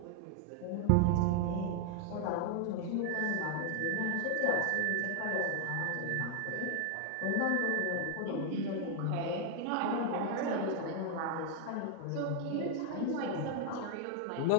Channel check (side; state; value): both; different; correlation 0.00